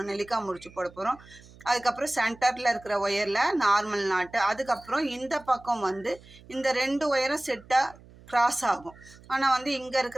நெல்லிக்காய் முடிச்சு போட போகிறோம். அதுக்கப்புறம் சென்டரில் இருக்கிற ஒயரில் நார்மல் நாட்டு, அதுக்கப்புறம் இந்த பக்கம் வந்து இந்த ரெண்டு ஒயரும் செட்டாக கிராஸ் ஆகும். ஆனால் வந்து இங்கே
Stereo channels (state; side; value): noise; right; hum, 23 dB below the sound